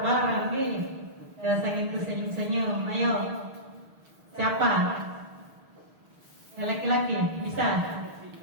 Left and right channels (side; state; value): left; late; 6.4 ms